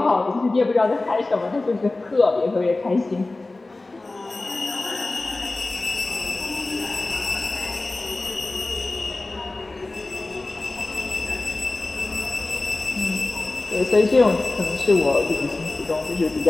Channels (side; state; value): right; quieter; 3.1 dB